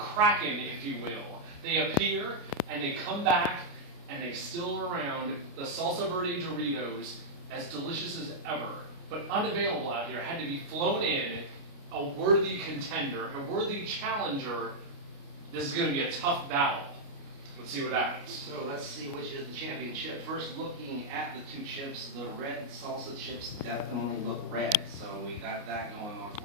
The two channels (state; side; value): late; left; 29 ms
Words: if you will, they appear, and they come back, and they still are around. The Salsa Verde Doritos, as delicious as ever, but unavailable out here, had to be flown in. A worthy contender, a worthy challenger. This is going to be a tough battle. Let's see what happens. So let's see which is the champion chip. First, looking at the two chips, the red salsa chips definitely look red, so we got that going on